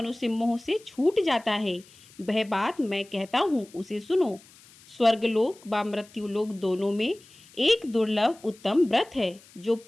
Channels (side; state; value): left; noise; hiss, 25 dB below the sound